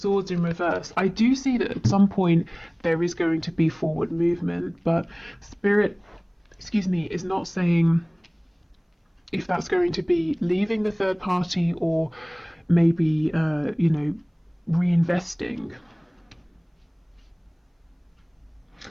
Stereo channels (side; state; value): both; identical; correlation 1.00